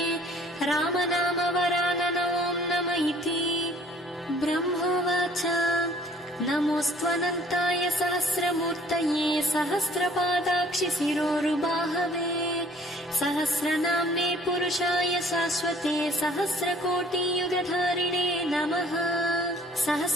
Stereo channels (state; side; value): normal; both; correlation 0.56